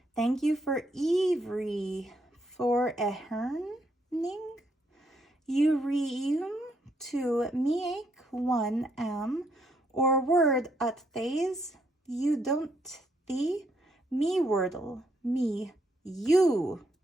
Thank you for Ivry for eherning. You reum to meek one or word at thays you don't thee me wordle me you.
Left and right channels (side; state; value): both; normal; correlation 0.74